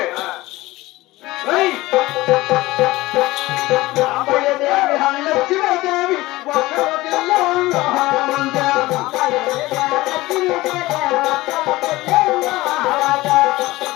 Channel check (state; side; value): quieter; right; 18.9 dB